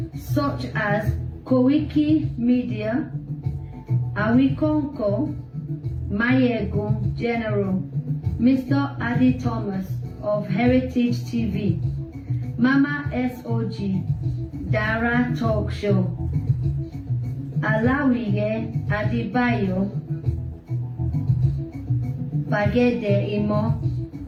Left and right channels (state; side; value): identical; both; correlation 1.00